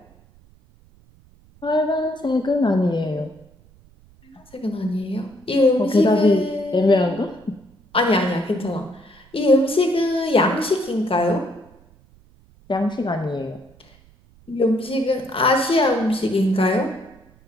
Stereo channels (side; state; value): right; noise; rumble, 28 dB below the sound